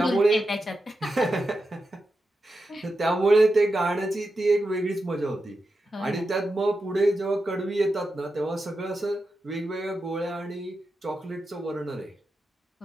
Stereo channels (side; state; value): both; normal; correlation 0.89